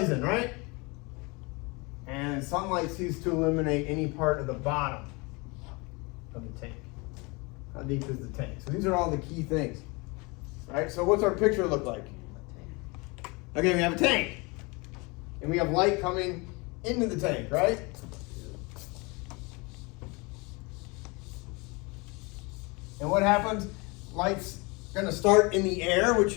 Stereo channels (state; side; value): quieter; right; 27.5 dB